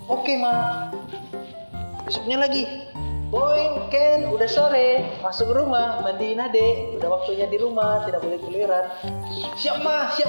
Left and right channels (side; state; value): both; inverted; correlation -1.00